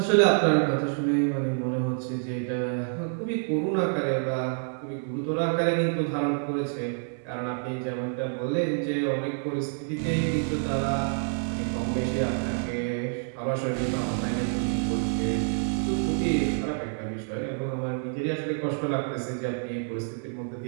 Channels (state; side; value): silent; left; 60 dB below the other